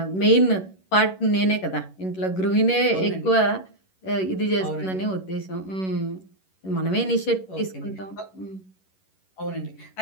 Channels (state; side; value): late; right; 11 ms